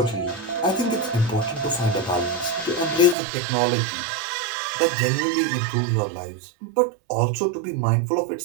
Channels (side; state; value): left; drops out; at 3.2 s